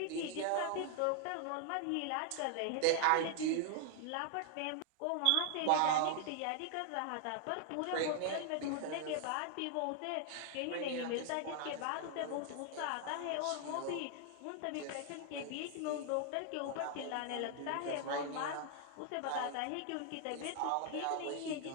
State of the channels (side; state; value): both; different; correlation 0.00